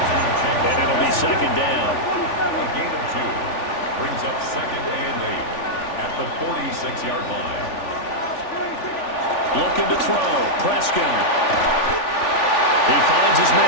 And it'll be 2nd down. A gain of 2 brings up 2nd and 8 at the 46-yard line. Looking to throw. Prescott. He finds his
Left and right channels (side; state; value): right; late; 3.4 ms